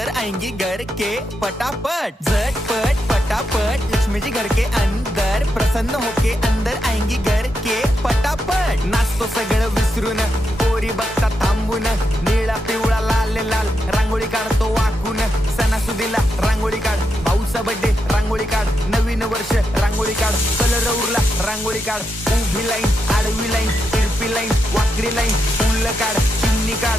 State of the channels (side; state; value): both; normal; correlation 0.84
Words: आएंगी घर के पटापट। झटपट पटापट लक्ष्मी जी घर के अंदर प्रसन्न होके अंदर आएंगी घर के पटापट। नाचतो सगळं विसरून पोरी बघता थांबून निळा पिवळा लाल लाल रांगोळी काढतो वाकून। सणासुदीला रांगोळी काढ, भाऊचा बर्थडे रांगोळी काढ, नवीन वर्ष रांगोळी काढ, कलर उरला रांगोळी काढ, उभी लाईन आडवी लाईन तिरपी लाईन वाकडी लाईन फुल काढ, चिमणी